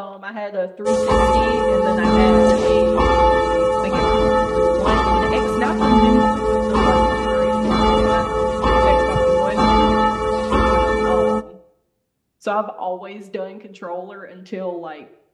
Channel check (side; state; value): both; identical; correlation 1.00